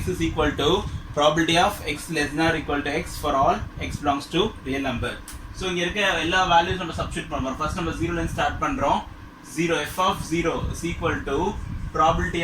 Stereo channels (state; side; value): identical; both; correlation 1.00